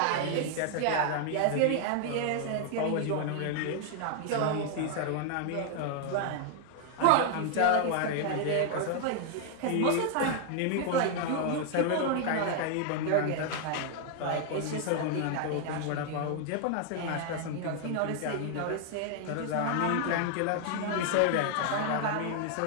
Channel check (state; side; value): different; both; correlation 0.00